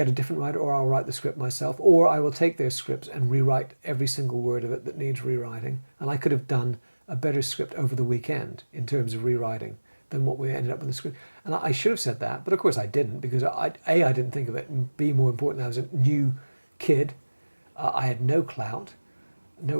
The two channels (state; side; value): inverted; both; correlation -1.00